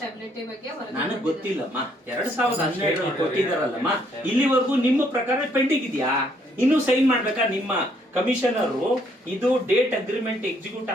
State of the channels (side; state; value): both; normal; correlation 0.68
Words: ಬಗ್ಗೆ ನನಗೆ ಗೊತ್ತಿಲ್ಲಮ್ಮ. 2012ರಲ್ಲಿ ಕೊಟ್ಟಿದಾರಲ್ಲಮ್ಮ, ಇಲ್ಲಿವರೆಗೂ ನಿಮ್ಮ ಪ್ರಕಾರ ಪೆಂಡಿಂಗ್ ಇದೆಯಾ? ಇನ್ನು ಸೈನ್ ಮಾಡ್ಬೇಕಾ ನಿಮ್ಮ ಕಮಿಷನರ್? ಇದು ಡೇಟ್ ಅಗ್ರಿಮೆಂಟ್ ಎಕ್ಸಿಕ್ಯೂಟ್